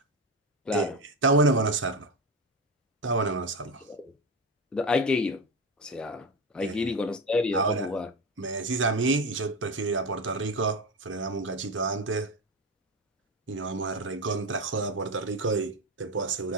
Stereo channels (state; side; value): normal; both; correlation 0.18